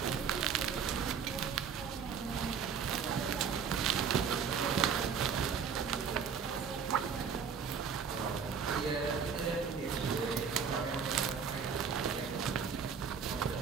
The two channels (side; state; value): left; quieter; 6.5 dB